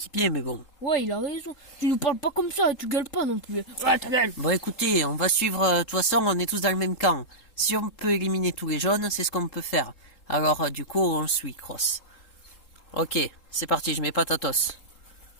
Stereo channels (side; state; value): right; late; 3.8 ms